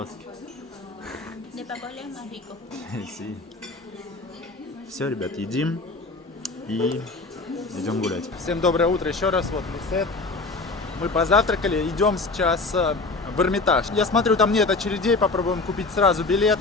De papola es más rico. Все, ребят, едим и идем гулять. Всем доброе утро еще раз. Вот Лисет. Мы позавтракали, идем сейчас в Эрмитаж. Я смотрю, там нет очередей, попробуем купить сразу билет.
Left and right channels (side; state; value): right; quieter; 3.6 dB